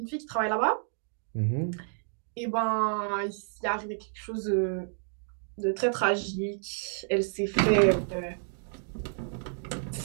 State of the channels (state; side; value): silent; left; 58 dB below the other